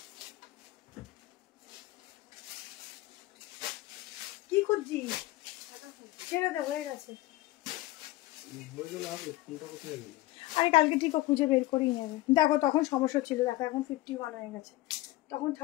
কি খুঁজছিস? ছেড়ে দে, হয়ে গেছে। আরে কালকে ঠিক খুঁজে বের করেই নেবে। দেখো তখন সমস্যা ছিল, দেখো এখন 51 হয়ে গেছে, তখন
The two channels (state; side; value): quieter; right; 17.7 dB